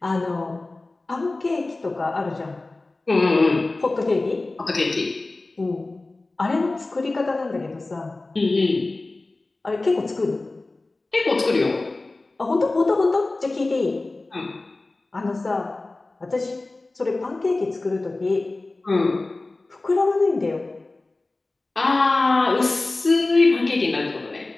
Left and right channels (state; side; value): quieter; right; 3.1 dB